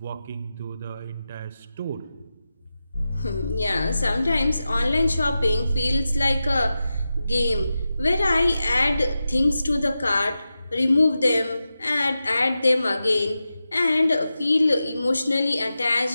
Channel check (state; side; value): inverted; both; correlation -0.92